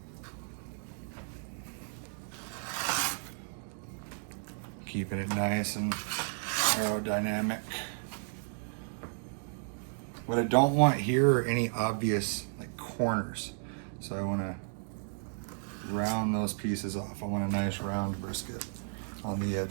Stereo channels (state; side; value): silent; left; digital silence